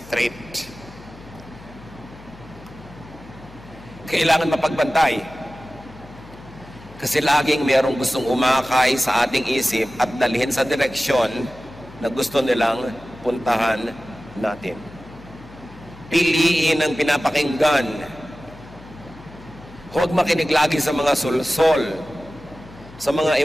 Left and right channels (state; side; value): noise; left; hum, 20 dB below the sound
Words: Kailangan mapagbantay. Kasi laging merong gustong umakay sa ating isip at dalhin sa direksyon na gusto nilang puntahan natin. Piliin ang pinapakinggan. Huwag makinig lagi sa mga sulsol, sa mga